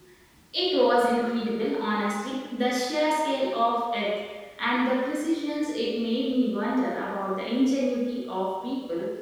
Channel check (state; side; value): identical; both; correlation 1.00